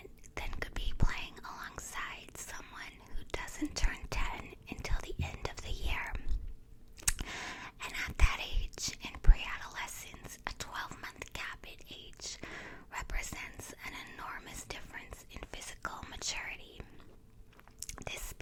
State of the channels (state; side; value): identical; both; correlation 1.00